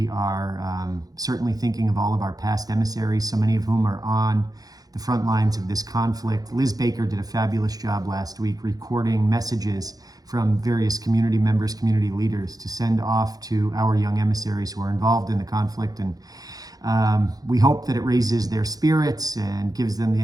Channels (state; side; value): late; left; 0.18 ms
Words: are certainly thinking of all of our past emissaries, so many of whom are on the front lines of this conflict. Liz Baker did a fabulous job last week recording messages from various community members, community leaders to send off to our young emissaries who are involved in the conflict. And we hope that it raises their spirits and gives them the